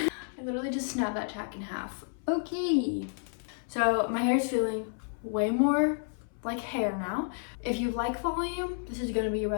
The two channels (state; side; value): silent; right; 57 dB below the other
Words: literally just snapped that tack in half. Okay. So my hair is feeling way more like hair now. If you like volume, this is gonna be your